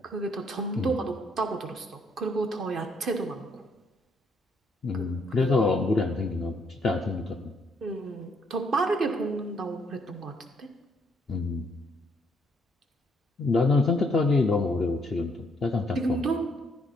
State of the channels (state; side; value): normal; both; correlation 0.70